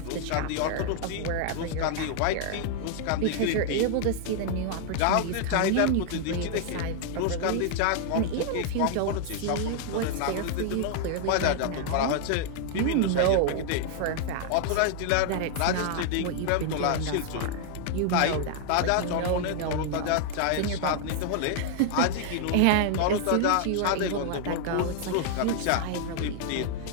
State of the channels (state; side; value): different; both; correlation 0.00